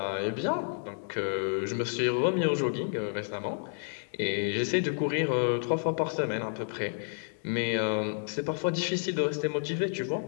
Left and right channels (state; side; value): silent; right; digital silence